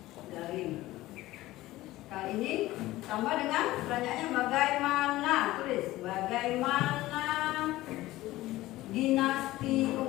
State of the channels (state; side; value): quieter; right; 17.1 dB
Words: daring. Kali ini tambah dengan pertanyaannya bagaimana, tulis bagaimana dinasti